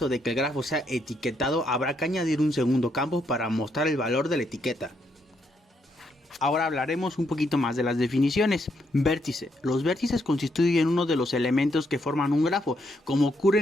de que el grafo sea etiquetado, habrá que añadir un segundo campo para mostrar el valor de la etiqueta. Ahora hablaremos un poquito más de las definiciones. Vértice. Los vértices constituyen uno de los elementos que forman un grafo, como ocurre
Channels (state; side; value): normal; both; correlation 0.76